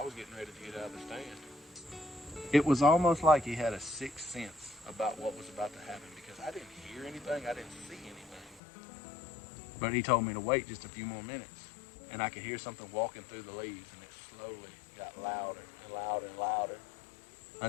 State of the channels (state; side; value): drops out; right; at 8.6 s